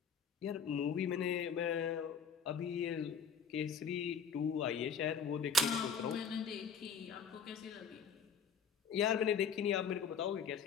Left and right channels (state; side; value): quieter; right; 5.9 dB